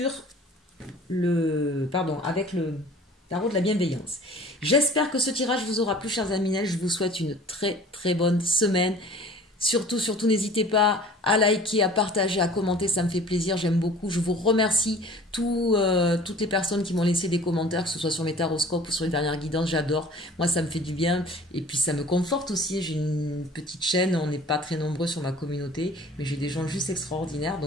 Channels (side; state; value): both; normal; correlation 0.46